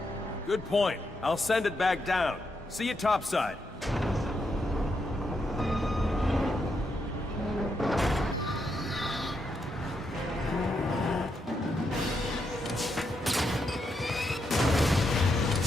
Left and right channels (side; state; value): both; normal; correlation 0.81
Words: Good point. I'll send it back down. See you topside.